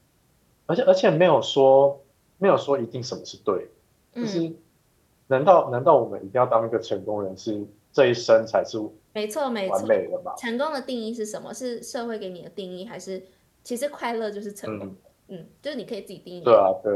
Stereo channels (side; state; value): both; identical; correlation 1.00